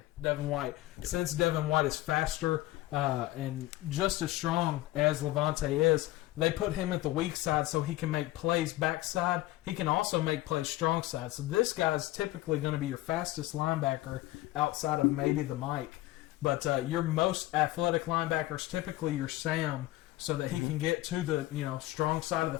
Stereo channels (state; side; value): quieter; right; 17.4 dB